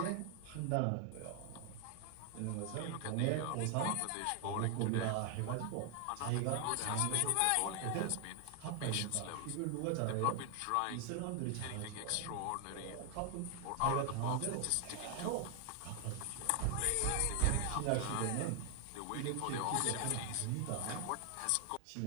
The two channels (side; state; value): both; different; correlation 0.00